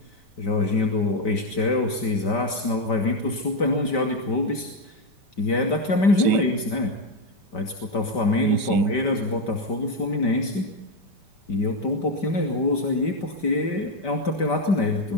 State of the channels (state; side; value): late; right; 5.1 ms